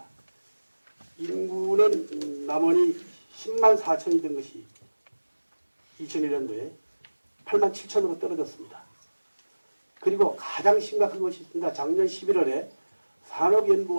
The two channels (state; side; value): inverted; both; correlation -1.00